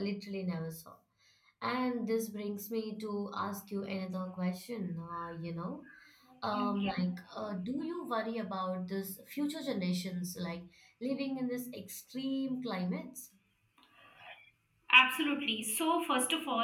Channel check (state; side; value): identical; both; correlation 1.00